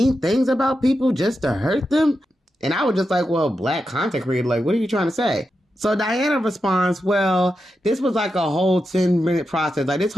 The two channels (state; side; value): normal; both; correlation 0.88